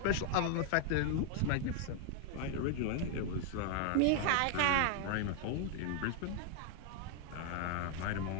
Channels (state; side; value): different; both; correlation 0.00